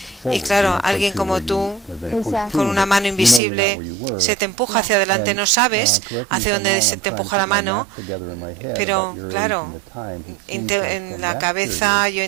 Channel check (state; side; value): drops out; left; at 3.4 s